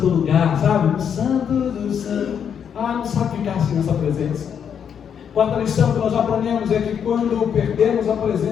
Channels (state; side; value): quieter; right; 7.9 dB